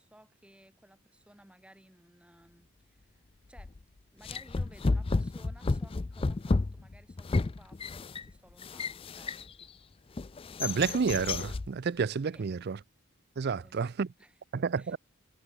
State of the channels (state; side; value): normal; both; correlation 0.51